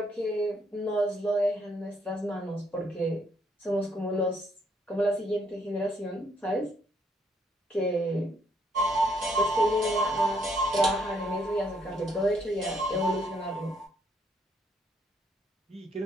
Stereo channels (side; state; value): both; normal; correlation 0.71